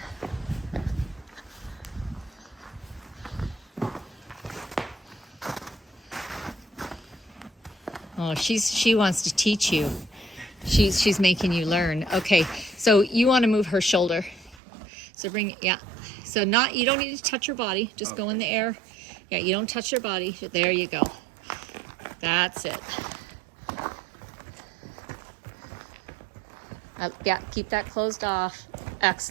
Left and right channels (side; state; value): left; drops out; at 14.6 s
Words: Oh, she wants to teach you. She's making you learn. Okay, so you want to move her shoulder. So bring, yeah. So you don't need to touch her body. Just go in the air. Yeah, you don't touch her body. There you go. That's it. Yeah, keep that closed off.